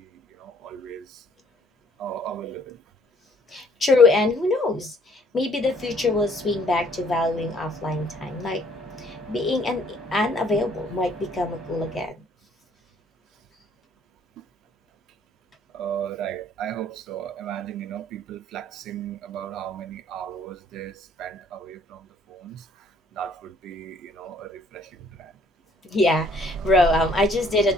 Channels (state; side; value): normal; both; correlation 0.61